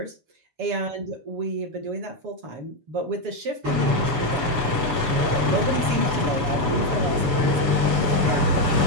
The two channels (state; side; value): late; left; 7.0 ms